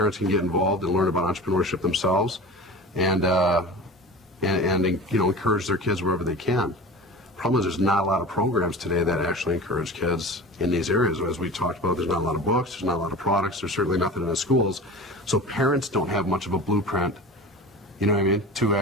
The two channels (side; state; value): both; normal; correlation 0.35